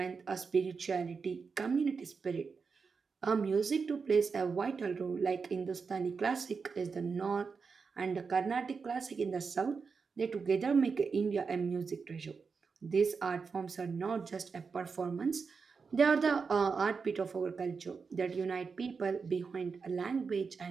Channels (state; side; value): quieter; left; 5.2 dB